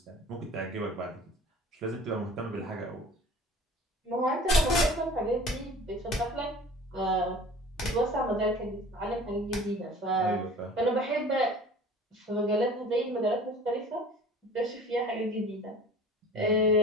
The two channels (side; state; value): both; normal; correlation 0.44